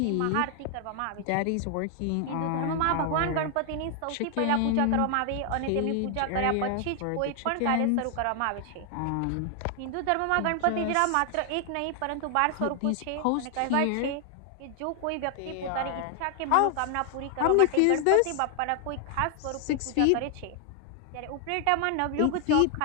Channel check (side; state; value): both; different; correlation 0.00